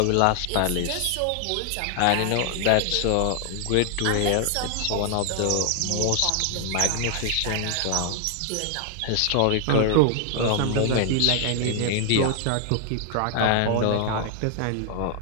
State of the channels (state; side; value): different; both; correlation 0.00